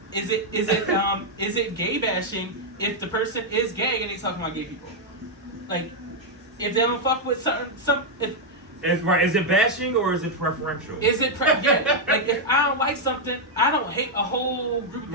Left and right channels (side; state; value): both; normal; correlation -0.01